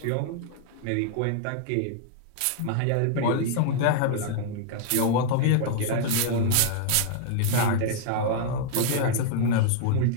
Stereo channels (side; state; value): both; different; correlation -0.01